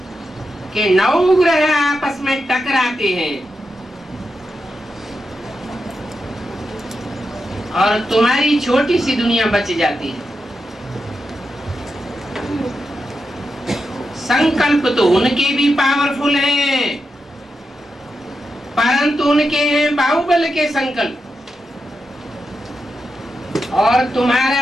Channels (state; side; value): normal; both; correlation 0.88